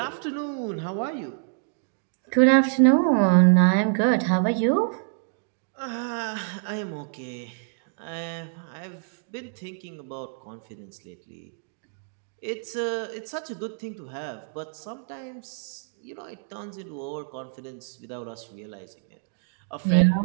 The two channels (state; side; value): silent; left; digital silence